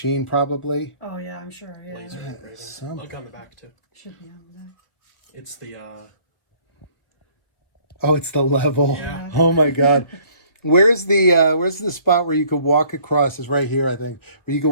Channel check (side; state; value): right; late; 1.2 ms